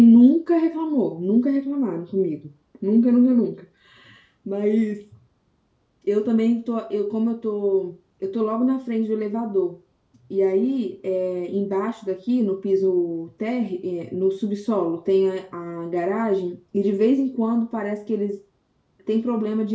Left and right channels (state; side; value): identical; both; correlation 1.00